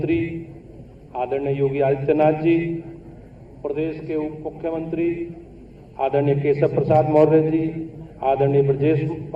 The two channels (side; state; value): both; identical; correlation 1.00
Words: आदरणीय योगी आदित्यनाथ जी, प्रदेश के उप मुख्यमंत्री आदरणीय केशव प्रसाद मौर्य जी, आदरणीय ब्रजेश